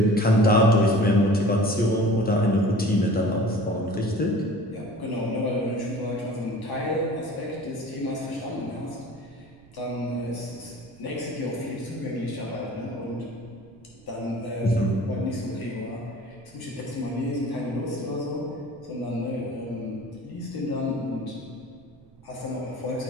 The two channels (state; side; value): noise; right; rumble, 26 dB below the sound